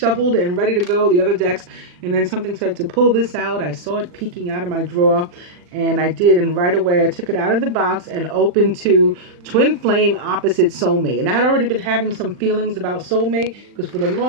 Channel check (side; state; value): left; late; 40 ms